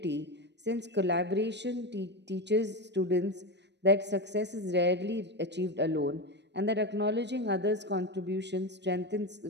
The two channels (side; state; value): left; late; 0.50 ms